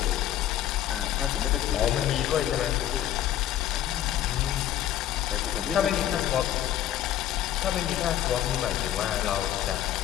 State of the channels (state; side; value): quieter; right; 12.0 dB